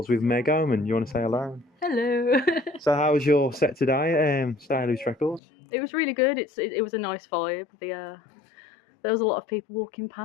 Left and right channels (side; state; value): right; drops out; at 5.4 s